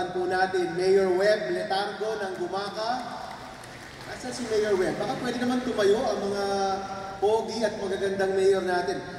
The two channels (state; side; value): identical; both; correlation 1.00